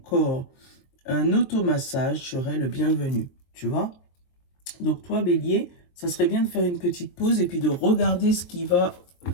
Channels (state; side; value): late; right; 23 ms